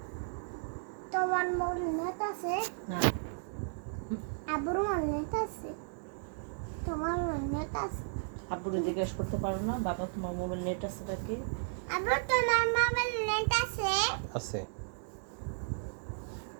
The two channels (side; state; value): left; silent; digital silence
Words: তোমার মোর নেট আছে না আবুর মোর নেট আছে তোমার নেট আছে আব্বুরে জিজ্ঞেস করতে পারো না বাবা তোমার মোবাইল নেট আছে নাকি আবু তোমার মোবাইল নেট আছে আছে